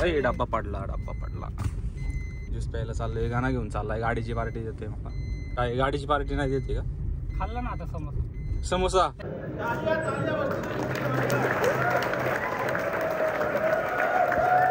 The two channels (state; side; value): identical; both; correlation 1.00